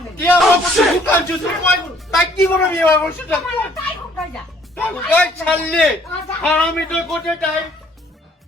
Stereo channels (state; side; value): normal; both; correlation 0.61